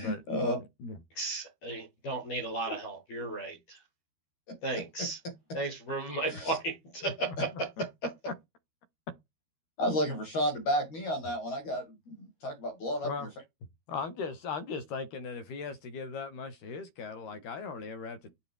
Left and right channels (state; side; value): late; right; 13 ms